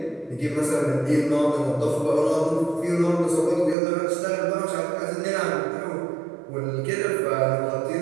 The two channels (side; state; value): left; drops out; at 3.8 s